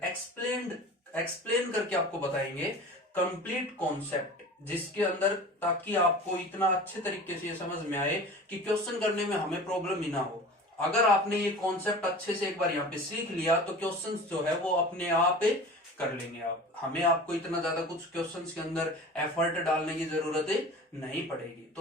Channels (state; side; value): normal; both; correlation 0.38